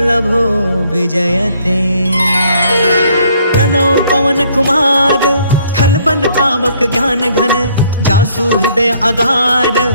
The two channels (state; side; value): inverted; both; correlation -0.64